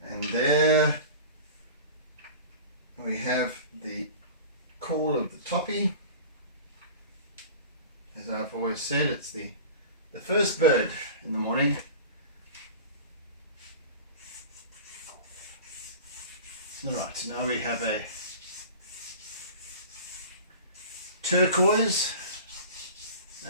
And there we have the call of the toppy. As I've always said, it's the first bird in the morning. Right, now we have a turquoise,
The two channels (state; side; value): inverted; both; correlation -0.37